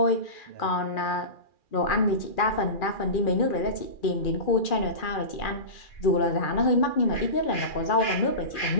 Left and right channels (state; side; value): late; right; 2.4 ms